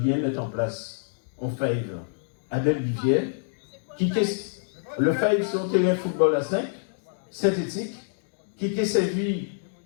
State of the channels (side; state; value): right; silent; digital silence